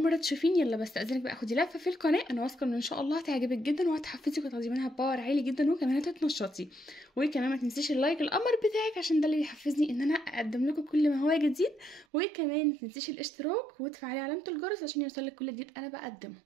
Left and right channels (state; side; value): drops out; left; at 12.1 s